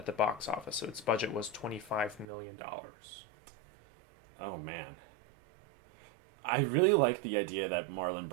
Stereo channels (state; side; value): drops out; left; at 2.2 s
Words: the box office. So its budget was $25 million. Oh, man. I really like the idea that Marlon